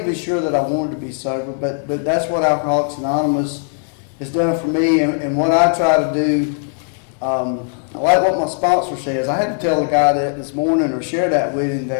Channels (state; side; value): silent; right; 64 dB below the other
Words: even sure that I wanted to be sober, but that's what Alcoholics Anonymous has done for me, and what I try to do. I like what my sponsor says. I had to tell the guy that this morning, or share that with him,